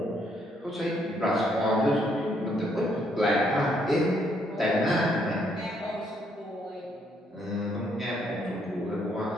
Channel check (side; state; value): both; normal; correlation 0.71